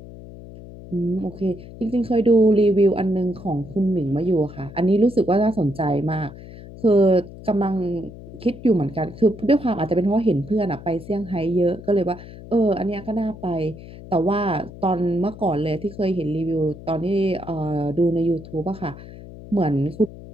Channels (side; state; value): left; noise; hum, 15 dB below the sound